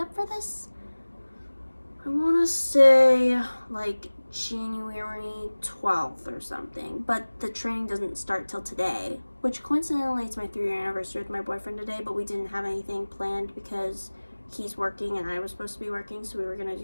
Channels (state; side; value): inverted; both; correlation -1.00